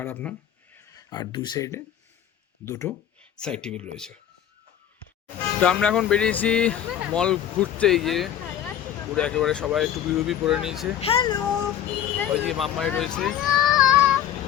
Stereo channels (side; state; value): right; quieter; 10.4 dB